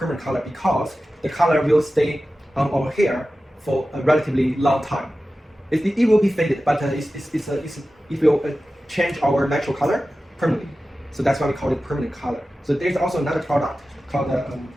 color because the color will stay on our hair for a relatively long time. It will be faded, but it will change our natural color permanently. So that's why we call it permanent color. So there's also another product called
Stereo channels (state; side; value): normal; both; correlation 0.94